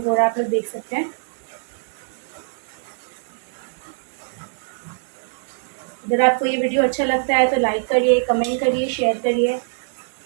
हो रहा है, आप लोग देख सकते हैं। अगर आपको ये वीडियो अच्छा लगता है तो लाइक करिए, कमेंट करिए, शेयर करिए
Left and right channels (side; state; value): left; silent; digital silence